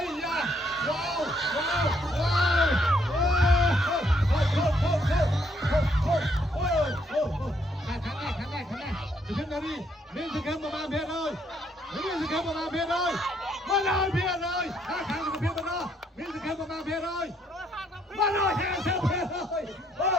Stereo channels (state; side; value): normal; both; correlation 0.71